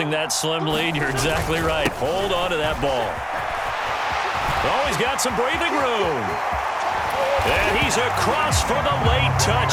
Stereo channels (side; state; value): both; identical; correlation 1.00